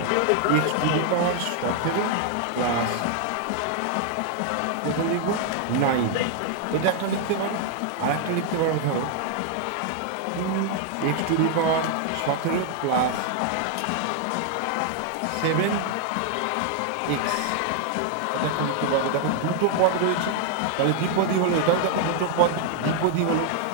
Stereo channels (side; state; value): both; different; correlation 0.00